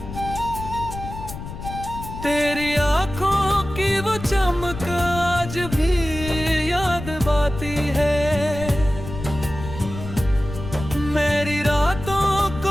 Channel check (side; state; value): left; noise; rumble, 10 dB below the sound